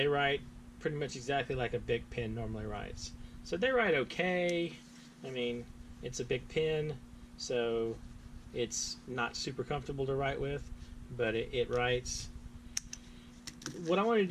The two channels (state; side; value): identical; both; correlation 1.00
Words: write pretty much exactly like a Bic pen normally writes. So they write okay. I mean, it's a Bic pen, so it's not super comfortable to write with, but it writes. What I wanted to